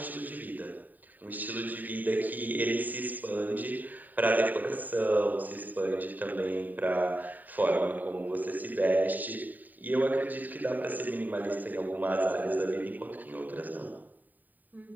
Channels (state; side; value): late; left; 0.086 ms